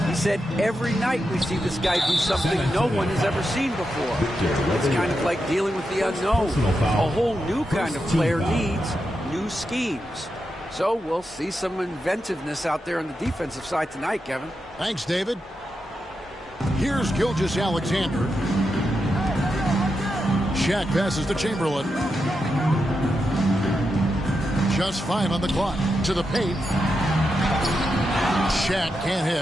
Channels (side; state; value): both; normal; correlation 0.87